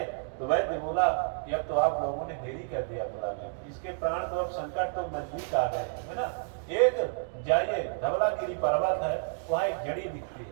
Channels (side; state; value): left; silent; digital silence